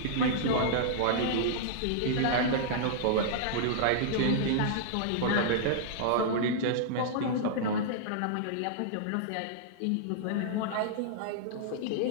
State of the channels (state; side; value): different; both; correlation -0.02